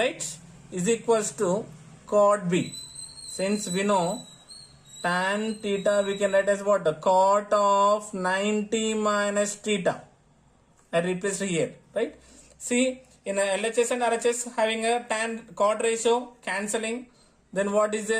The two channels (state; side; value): identical; both; correlation 1.00